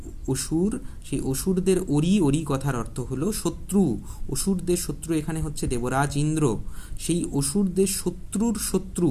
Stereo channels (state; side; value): identical; both; correlation 1.00